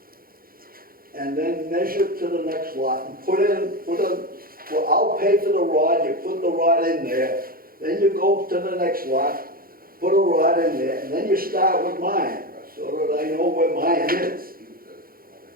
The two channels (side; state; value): left; late; 0.42 ms